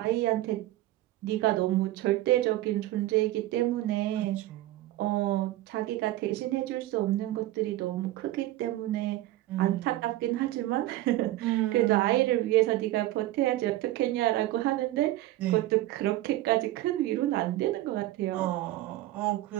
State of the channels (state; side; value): quieter; left; 15.9 dB